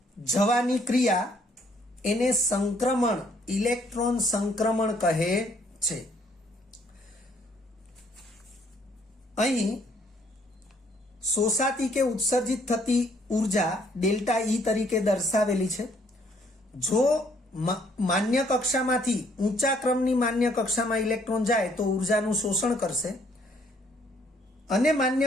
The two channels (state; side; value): normal; both; correlation 0.66